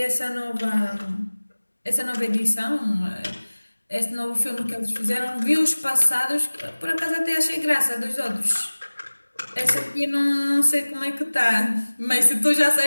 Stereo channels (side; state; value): both; inverted; correlation -1.00